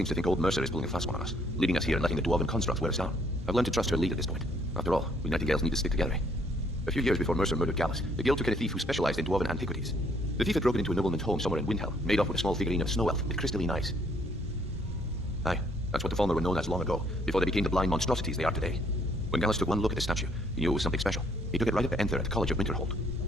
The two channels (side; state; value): both; normal; correlation 0.66